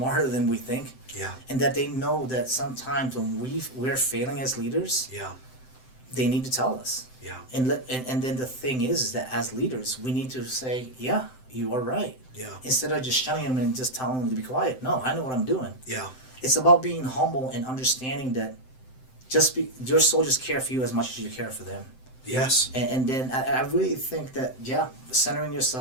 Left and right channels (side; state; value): right; late; 7.8 ms